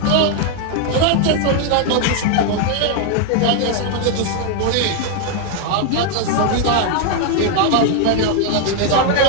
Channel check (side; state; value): both; different; correlation 0.01